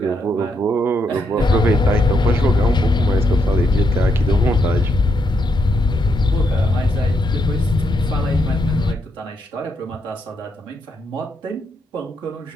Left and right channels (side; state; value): both; normal; correlation 0.79